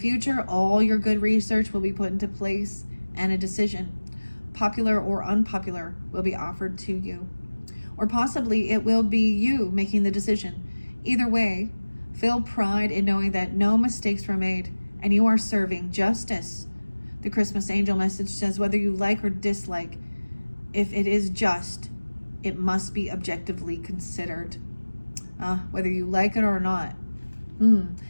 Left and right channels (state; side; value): inverted; both; correlation -1.00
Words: all your good research will be put into place and a decision, popular or unpopular, will be offered to you. Or possibly it will be you making the decision. Either way, feel pride in knowing that no mistakes were made and you are serving justice. The Christmas angel message says whether you like or dislike, if it is just, it must be objectively considered. Whether you like it or not.